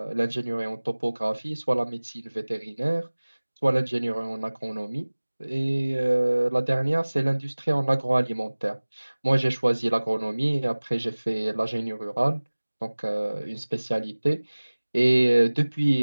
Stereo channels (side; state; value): both; inverted; correlation -1.00